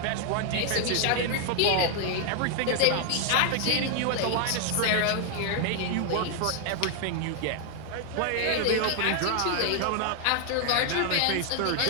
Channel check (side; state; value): both; different; correlation 0.00